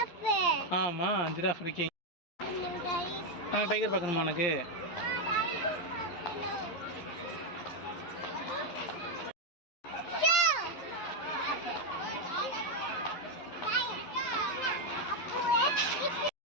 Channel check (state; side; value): late; right; 11 ms